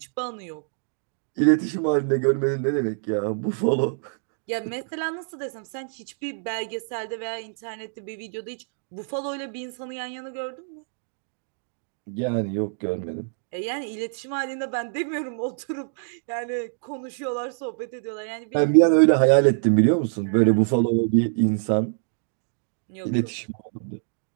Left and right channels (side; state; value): left; silent; digital silence